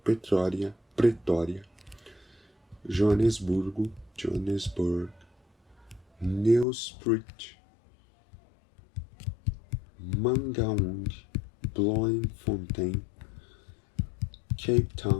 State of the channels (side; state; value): right; drops out; at 6.7 s